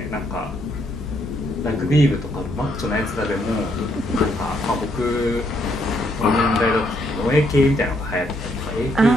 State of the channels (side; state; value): both; normal; correlation 0.73